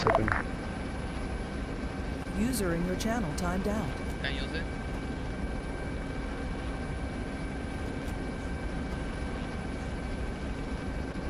User in your channel timed out. Can you use it?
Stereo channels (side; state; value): both; identical; correlation 1.00